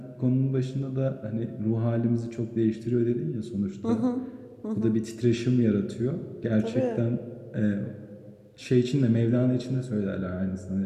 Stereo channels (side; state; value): both; identical; correlation 1.00